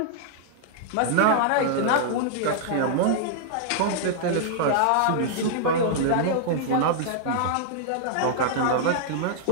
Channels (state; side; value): different; both; correlation -0.01